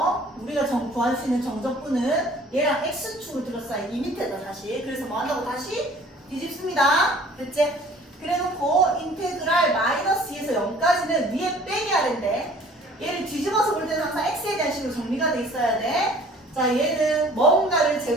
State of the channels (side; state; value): both; normal; correlation 0.51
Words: 우리가 구할 수 있는 정적분은 얘랑 x축을 둘러싸인 이 밑에다 다시. 그래서 뭐 한다고 다시 뒤집습니다. 됐지? 그래놓고 인테그랄 마이너스 2에서 0까지는 위에 빼기 하는데 얘를 뒤집어서 볼 때는 항상 x에 대한 식으로 정리가 돼 있어야 돼. 자, 얘는 뭔가를